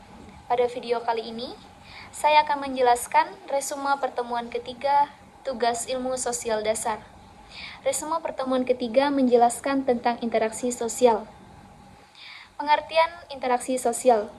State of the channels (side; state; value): both; identical; correlation 1.00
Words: Pada video kali ini, saya akan menjelaskan resume pertemuan ketiga tugas ilmu sosial dasar. Resume pertemuan ketiga menjelaskan tentang interaksi sosial. Pengertian interaksi sosial.